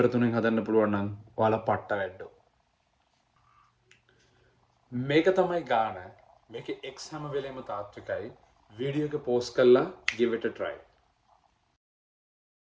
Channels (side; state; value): both; identical; correlation 1.00